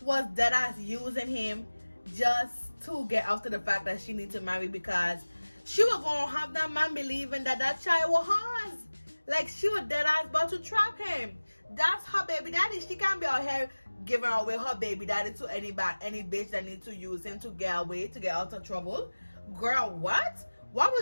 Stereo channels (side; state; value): both; inverted; correlation -1.00